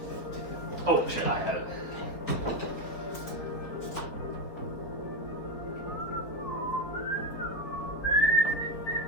Oh, shit, I had it.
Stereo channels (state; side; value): late; right; 3.9 ms